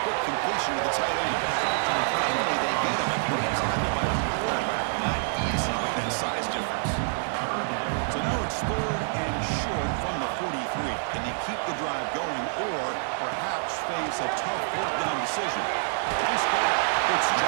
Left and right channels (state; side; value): silent; left; digital silence